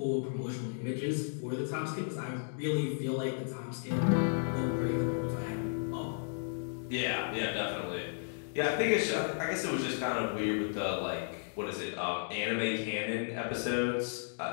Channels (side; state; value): right; silent; digital silence